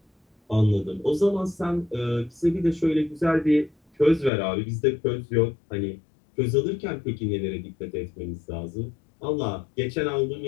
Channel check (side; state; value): right; drops out; at 4.3 s